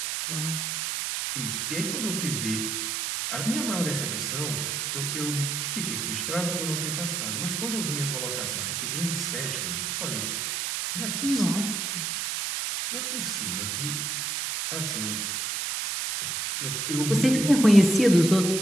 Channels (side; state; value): right; noise; hiss, 1 dB below the sound